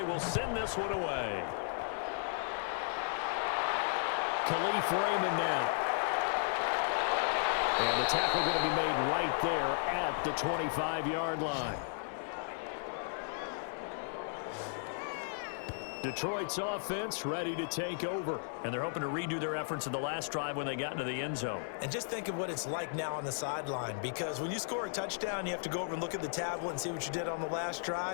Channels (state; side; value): silent; right; digital silence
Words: will send this one away. Khalif Raymond now. And the tackle going to be made right there at the 25-yard line. Detroit's offense ready to take over. And they're hoping to redo their efforts in the last drive when they got into the end zone. And just think of what it's like now on the sideline, because when you score a touchdown, you have to go over and look at the tablet and see what you did on the last